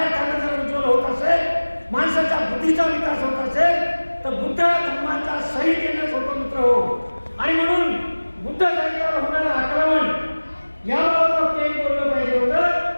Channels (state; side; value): inverted; both; correlation -1.00